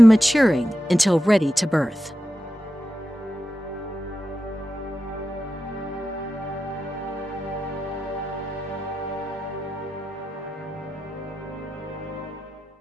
maturing until ready to birth.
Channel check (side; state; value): both; normal; correlation 0.91